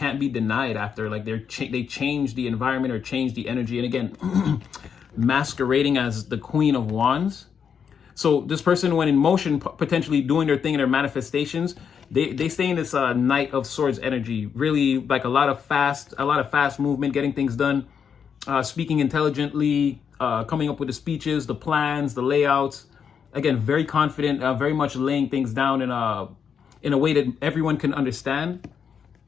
be denied after. Like they change the environment or change the energy. And again, masquerading as the Queen of Wands. So this person, when in motion, potentially doing their thing in their manifestations, they stay in this Knight of Swords energy. Really, like a lot of fast movement, getting things done, speaking intelligently, coming up with the speeches, the plans, the layouts. Again, very confident, very much laying things down in a way that everyone can understand,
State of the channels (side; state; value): right; quieter; 7.1 dB